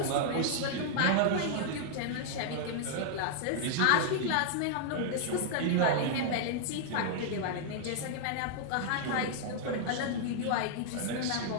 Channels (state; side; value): different; both; correlation -0.01